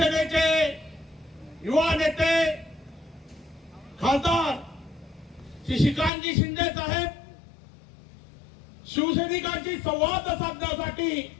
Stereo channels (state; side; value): drops out; right; at 6.1 s